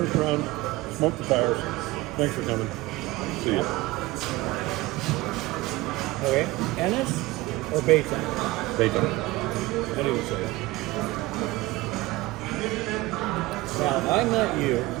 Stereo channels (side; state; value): left; quieter; 19.8 dB